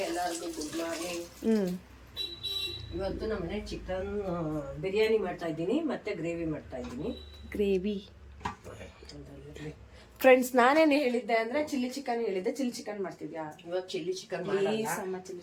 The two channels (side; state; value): both; identical; correlation 1.00